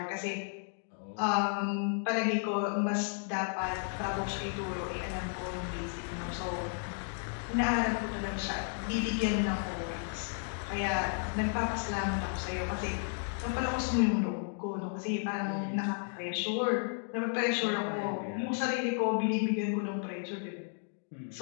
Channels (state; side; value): silent; right; 55 dB below the other